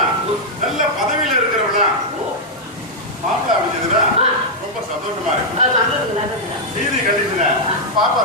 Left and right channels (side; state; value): both; normal; correlation -0.05